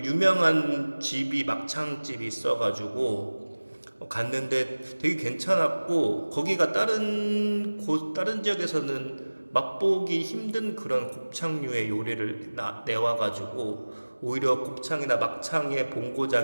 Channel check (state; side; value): inverted; both; correlation -1.00